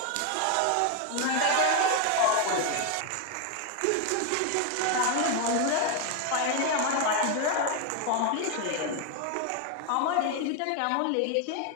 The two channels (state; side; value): different; both; correlation 0.01